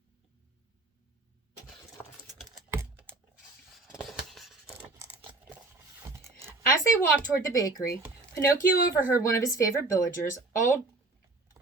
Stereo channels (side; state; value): left; quieter; 3.2 dB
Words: As they walked toward the bakery, Pinocchio overheard one of his favorite villagers, old